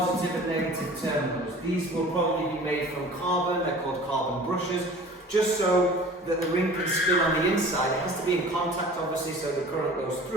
and negative terminals. These will probably be made from carbon, they're called carbon brushes, just so that the ring can spin on the inside. It has to be in contact obviously so the current goes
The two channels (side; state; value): both; normal; correlation 0.43